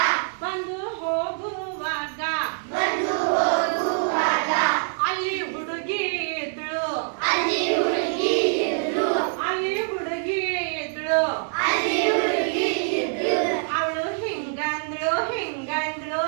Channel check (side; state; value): left; silent; digital silence